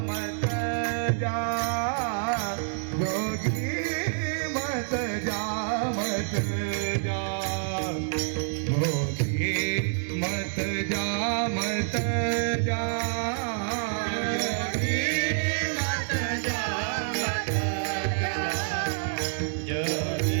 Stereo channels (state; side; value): silent; left; 56 dB below the other